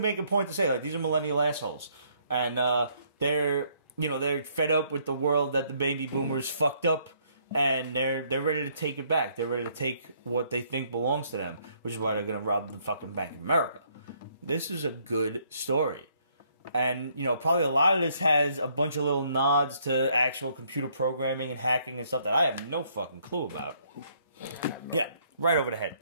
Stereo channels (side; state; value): both; inverted; correlation -0.68